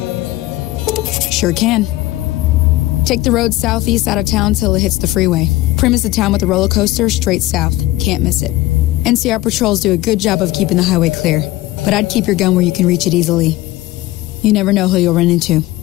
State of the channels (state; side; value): quieter; right; 17.5 dB